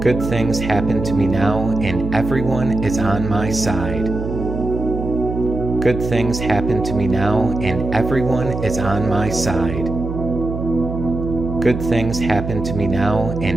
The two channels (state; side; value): noise; right; hum, 6 dB below the sound